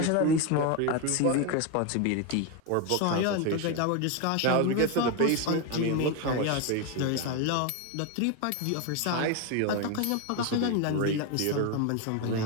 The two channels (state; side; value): different; both; correlation 0.02